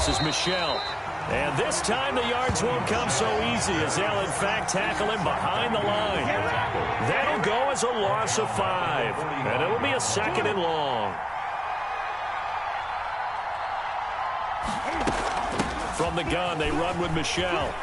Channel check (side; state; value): both; identical; correlation 1.00